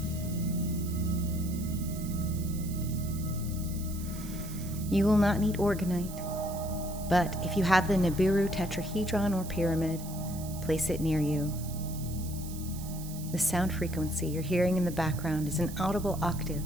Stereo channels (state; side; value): noise; right; hiss, 14 dB below the sound